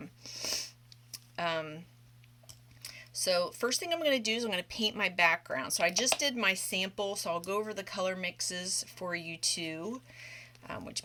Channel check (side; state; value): both; identical; correlation 1.00